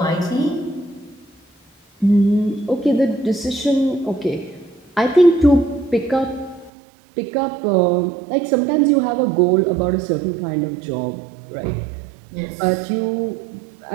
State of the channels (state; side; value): drops out; left; at 6.7 s